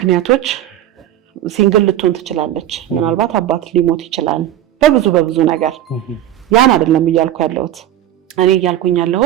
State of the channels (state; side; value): quieter; left; 12.4 dB